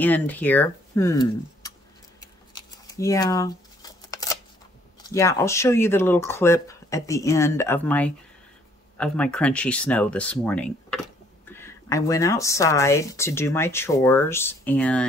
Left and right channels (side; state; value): both; normal; correlation 0.63